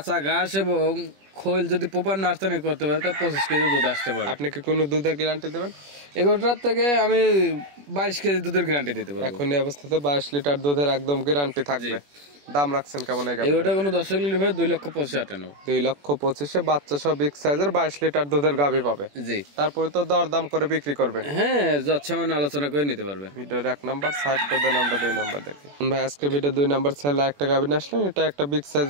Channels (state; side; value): late; left; 21 ms